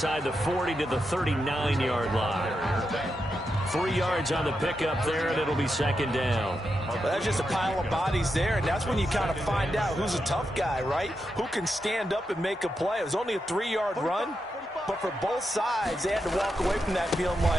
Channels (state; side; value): normal; both; correlation 0.86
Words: the 40 to the 39-yard line. 3 yards on the pickup there, and it'll be 2nd down. Well, that's just a pile of bodies there, and that's when you kind of find out who's a tough guy, right? Who can stand up and make a play. It was only a 3-yard run, but for both sides, they had to walk away from that feeling